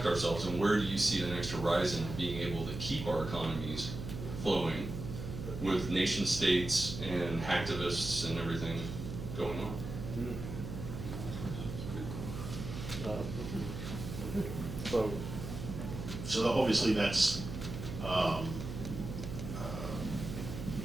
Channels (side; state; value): right; noise; hum, 7 dB below the sound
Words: ourselves, and where do you see the next horizon of being able to keep our economies flowing with nation states and hacktivists and everything going on? So obviously that's